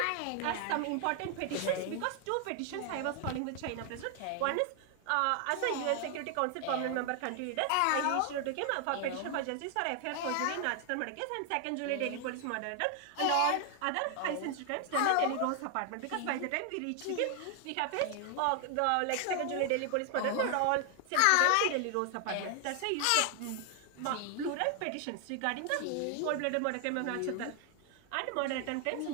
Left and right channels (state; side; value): different; both; correlation 0.00